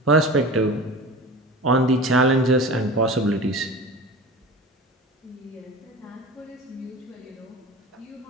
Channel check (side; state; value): both; normal; correlation 0.34